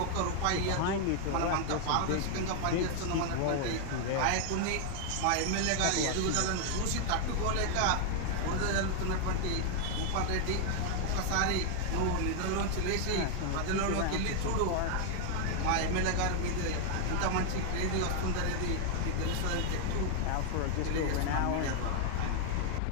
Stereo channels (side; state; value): both; different; correlation 0.00